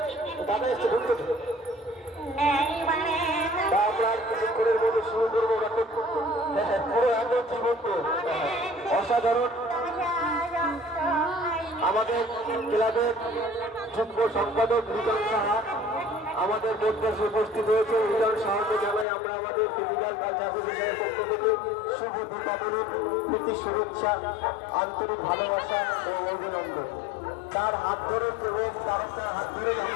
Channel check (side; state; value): right; drops out; at 19.1 s